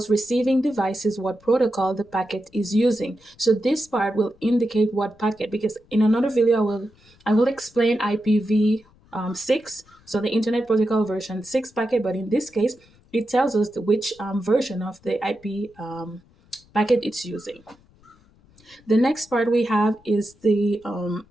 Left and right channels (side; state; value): left; noise; rumble, 30 dB below the sound